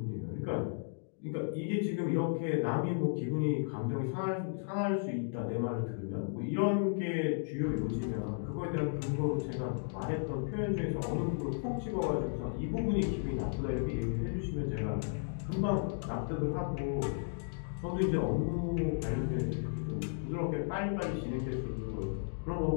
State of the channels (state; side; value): silent; right; digital silence